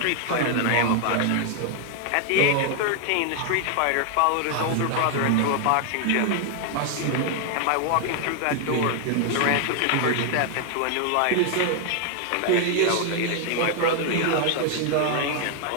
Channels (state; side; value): different; both; correlation 0.00